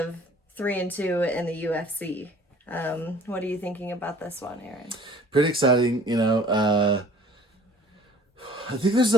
3-2 in the UFC. What are you thinking about this one, Aaron? Pretty exciting. I think there's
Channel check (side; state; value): both; normal; correlation 0.52